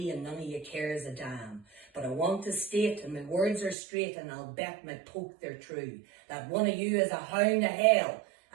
and none of you cares a damn. But I want to state, and my words are straight, and I'll bet my poke they're true, that one of you is a hound of hell,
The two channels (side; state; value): left; drops out; at 3.8 s